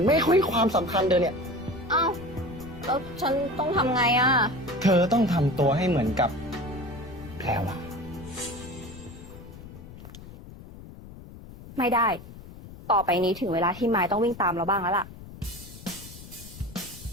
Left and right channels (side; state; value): left; noise; rumble, 16 dB below the sound